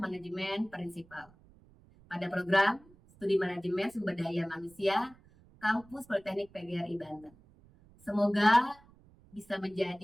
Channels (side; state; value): right; noise; rumble, 27 dB below the sound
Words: Prinsipal pada program Studi Manajemen Sumber Daya Manusia Kampus Politeknik PGRI Banten. Semoga bisa